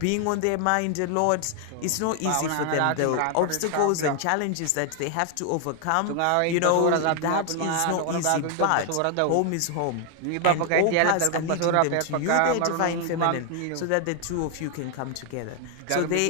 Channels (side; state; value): both; different; correlation 0.00